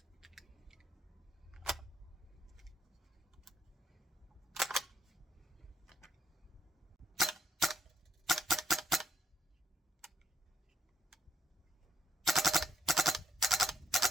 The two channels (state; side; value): normal; both; correlation 0.76